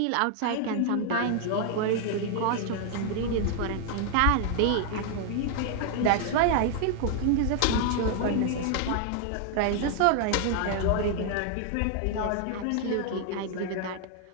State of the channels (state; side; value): different; both; correlation 0.00